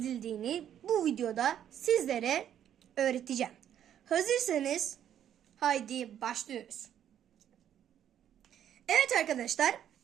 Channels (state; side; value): quieter; left; 10.1 dB